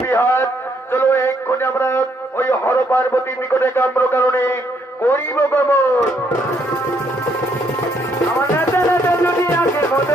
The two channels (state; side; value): normal; both; correlation 0.71